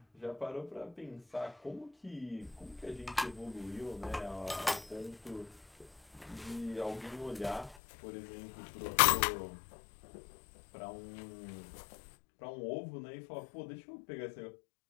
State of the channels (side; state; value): right; drops out; at 7.8 s